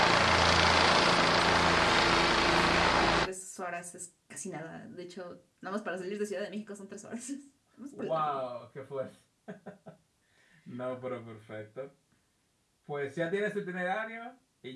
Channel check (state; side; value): identical; both; correlation 1.00